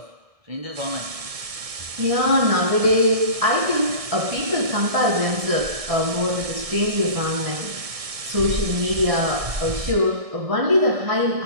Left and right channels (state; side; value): late; left; 1.6 ms